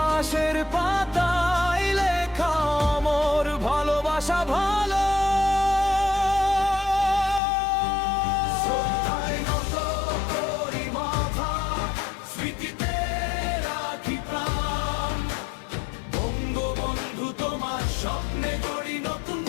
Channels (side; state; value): right; drops out; at 7.4 s